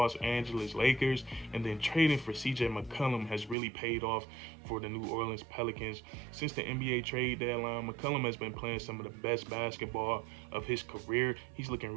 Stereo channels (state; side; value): drops out; left; at 3.6 s